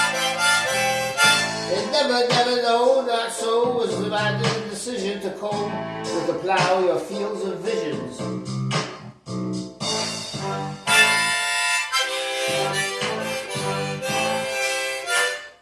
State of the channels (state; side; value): identical; both; correlation 1.00